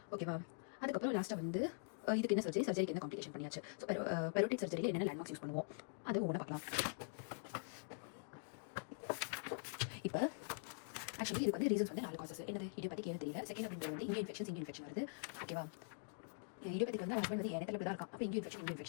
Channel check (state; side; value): silent; right; digital silence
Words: ஓகேவா? அதுக்கப்புறம் லாஸ்ட்டாக வந்து இதுக்கு என்ன சர்ஜரிக்கு என்ன காம்ப்ளிகேஷன் பண்ணியாச்சு. ஸோ பெரோட்டிக் சர்ஜரியில் என்னென்ன லேண்ட்மார்க்ஸ் யூஸ் பண்ணுவோம் அது ஒவ்வொன்றா பார்க்கலாம். இப்போ ஆக்சுவலி இதுக்கு வந்து ரீசன்ஸ் வந்து 4 காசஸ். என்னது இடியோபேத்திக் ஏன்னு தெரியல. செகண்ட் அப்படின்றது வந்து இங்கே இன்ஃபெக்ஷன் வருது. ஓகேவா? இடியோபேத்திக் வந்து ஹஸ்பண்ட் வந்து எண்ணத்தில் தான் இருக்கான். அப்போ இங்கே